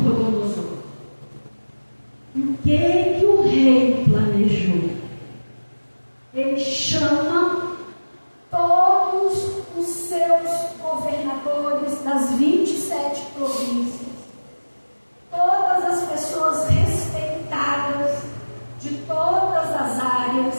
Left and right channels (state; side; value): inverted; both; correlation -1.00